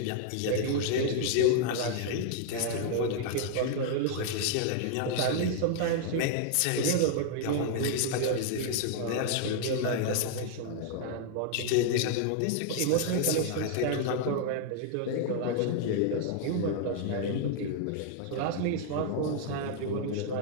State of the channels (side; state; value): both; different; correlation 0.00